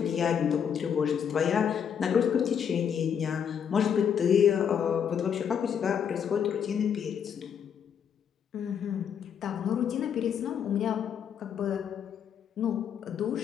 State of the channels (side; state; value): right; quieter; 8.0 dB